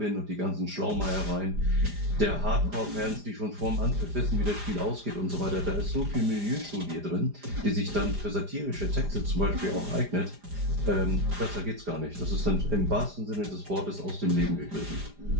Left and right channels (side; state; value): left; late; 4.9 ms